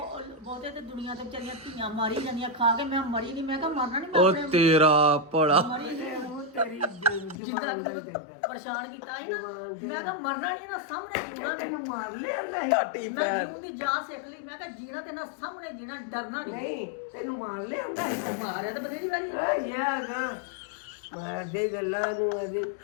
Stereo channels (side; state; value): right; drops out; at 7.4 s